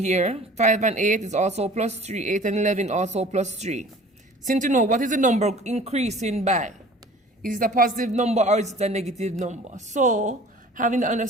5 and 8 is also plus 3. 8 and 11 also plus 3. So need to know what is the number increasing by. Is it a positive number or is it a negative number? So having the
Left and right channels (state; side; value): normal; both; correlation 0.46